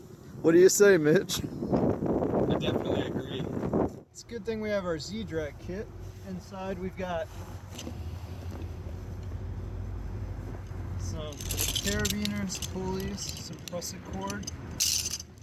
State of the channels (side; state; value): both; identical; correlation 1.00